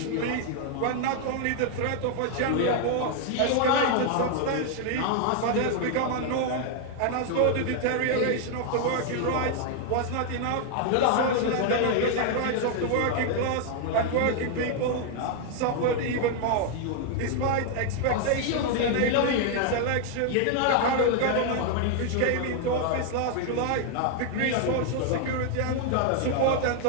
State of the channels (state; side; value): different; both; correlation 0.00